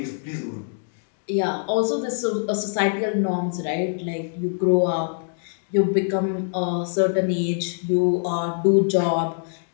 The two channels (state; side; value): silent; right; digital silence